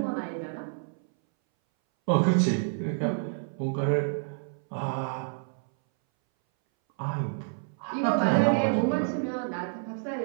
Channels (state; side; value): silent; left; 59 dB below the other